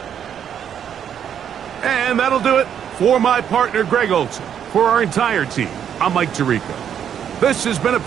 And that'll do it for my partner, Greg Olson. For our entire team, I'm Mike Tirico. This has been a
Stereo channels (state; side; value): quieter; left; 8.9 dB